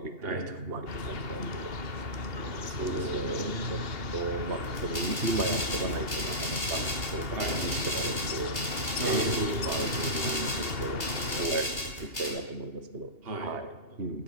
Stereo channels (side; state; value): left; late; 2.8 ms